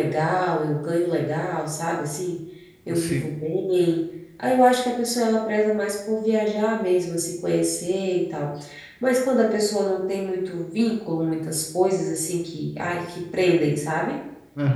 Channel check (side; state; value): both; identical; correlation 1.00